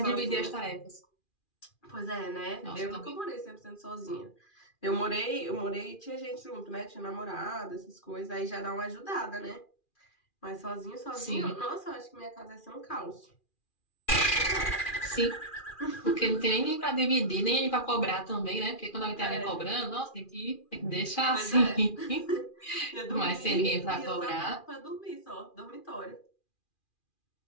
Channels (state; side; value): late; right; 2.4 ms